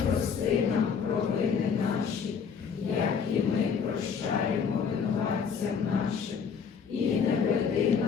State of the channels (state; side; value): quieter; right; 6.4 dB